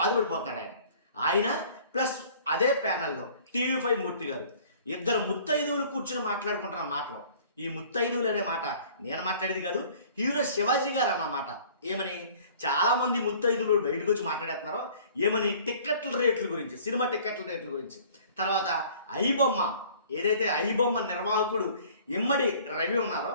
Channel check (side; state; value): both; inverted; correlation -0.51